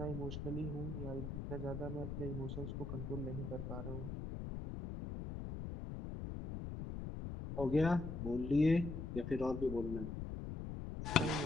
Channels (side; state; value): left; noise; rumble, 6 dB below the sound